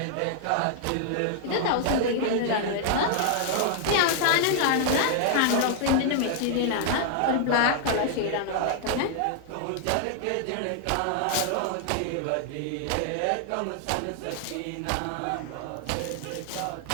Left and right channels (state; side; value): different; both; correlation -0.01